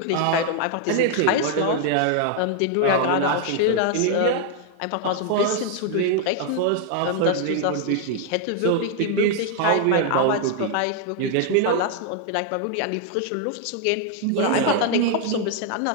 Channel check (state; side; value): different; both; correlation 0.00